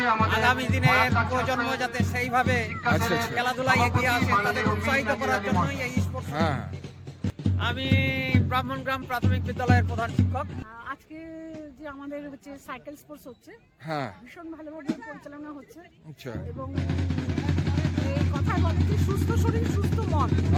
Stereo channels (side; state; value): both; identical; correlation 1.00